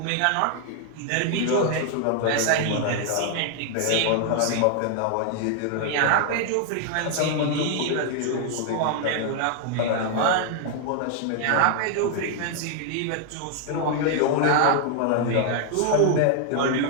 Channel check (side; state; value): both; different; correlation 0.00